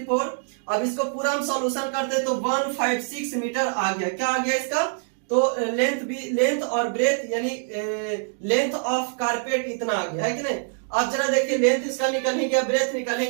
अब इसको पूरा हम सॉल्यूशन करते हैं तो 156 मीटर आ गया। क्या आ गया इसका, तो लेंथ और ब्रेथ यानी लेंथ ऑफ कारपेट इतना आ गया, है कि नहीं। अब जरा देखिए लेंथ इसका निकल ही गया, ब्रेथ निकल ही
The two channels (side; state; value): left; silent; 62 dB below the other